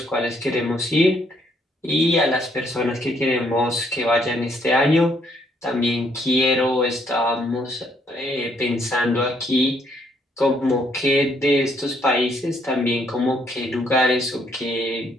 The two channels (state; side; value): normal; both; correlation 0.69